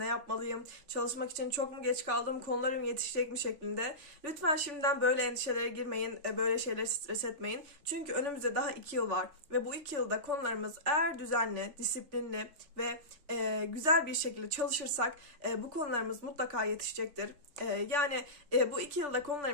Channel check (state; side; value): late; left; 3.4 ms